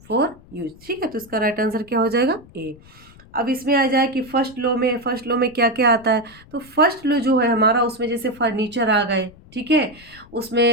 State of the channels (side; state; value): left; noise; rumble, 24 dB below the sound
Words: फॉर यूज, ठीक है। तो इसका राइट आंसर क्या हो जाएगा, ए। अब इसमें आ जाए कि फर्स्ट लो में क्या क्या आता है, तो फर्स्ट लो जो है हमारा, उसमें जैसे फर्नीचर आ गए, ठीक है,